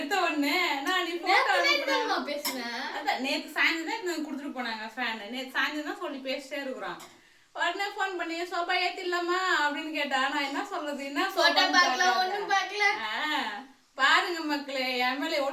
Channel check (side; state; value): both; identical; correlation 1.00